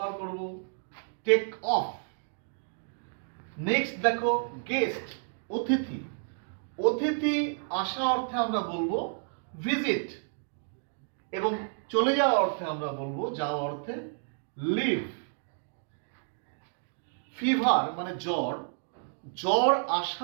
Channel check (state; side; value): silent; left; digital silence